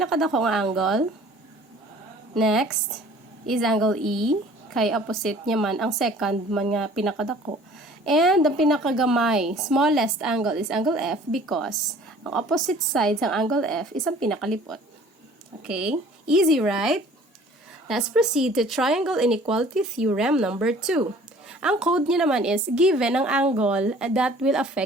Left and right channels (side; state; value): both; normal; correlation 0.50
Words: nga angle. Next is angle E, kay opposite niya man ang second man nga pinakadako. And the pinakagamay, smallest angle is angle F because ang opposite sides ng angle F is ang pinakalipot. Okay, easy, right? Let's proceed to triangle inequality theorem number 2. Ang code niya naman is given ang angle that will